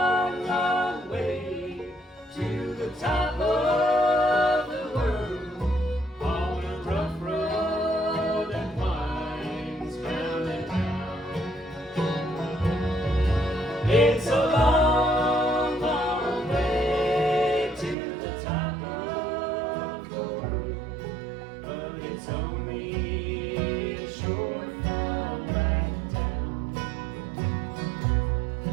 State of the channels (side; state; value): left; drops out; at 17.9 s